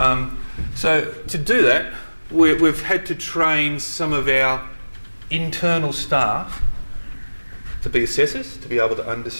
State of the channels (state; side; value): inverted; both; correlation -1.00